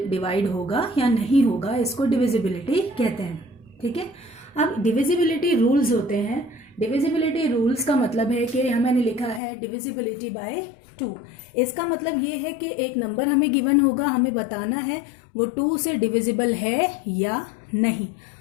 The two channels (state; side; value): drops out; right; at 9.4 s